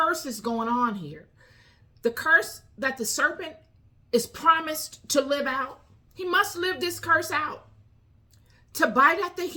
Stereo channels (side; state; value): both; identical; correlation 1.00